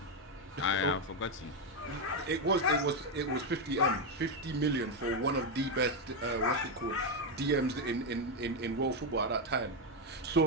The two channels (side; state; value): both; normal; correlation 0.06